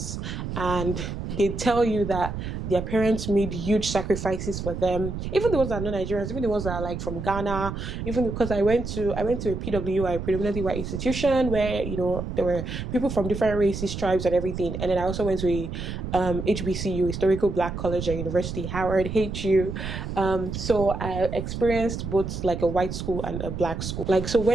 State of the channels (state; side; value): noise; right; rumble, 6 dB below the sound